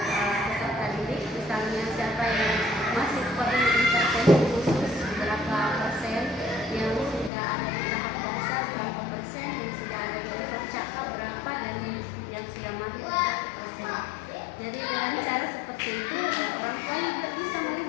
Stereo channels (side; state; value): right; drops out; at 7.3 s